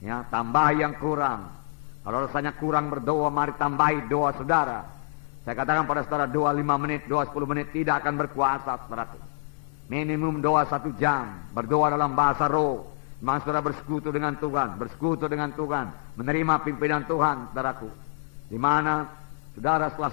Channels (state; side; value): silent; right; 60 dB below the other